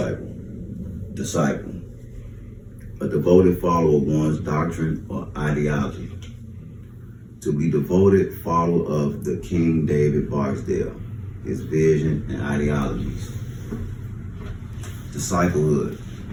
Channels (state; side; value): identical; both; correlation 1.00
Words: Disciple, a devoted follower of one's doctrine or ideology. To be devoted follower of the King David Barksdale, his vision and ideologies. Disciplehood